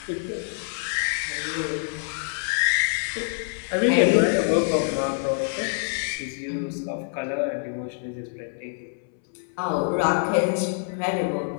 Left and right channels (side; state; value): right; silent; 61 dB below the other